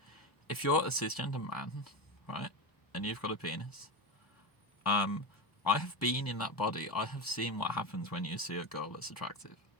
If you're a cisgender man, right, and you've got a penis, I have been in that body. I have seen what happens when you see a girl that's attractive.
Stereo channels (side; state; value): right; late; 1.0 ms